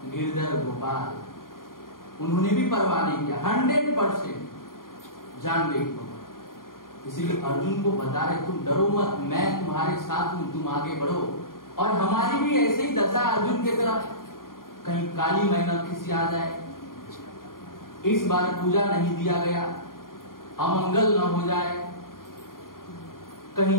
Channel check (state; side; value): late; right; 0.91 ms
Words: गिरधर गोपाल, उन्होंने भी परवाह नहीं किया, 100% जान गई। इसीलिए अर्जुन को बता रहे तुम डरो मत, मैं तुम्हारे साथ हूं, तुम आगे बढ़ो। और हमारी भी ऐसे ही दशा अर्जुन की तरफ, कहीं काली मेहनत किसी आ जाए, इस बार पूजा नहीं दिया गया, अमंगल न हो जाए, कहीं